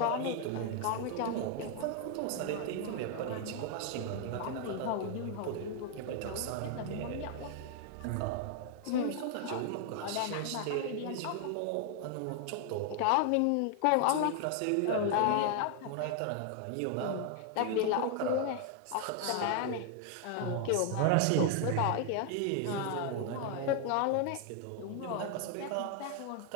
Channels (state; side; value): different; both; correlation 0.00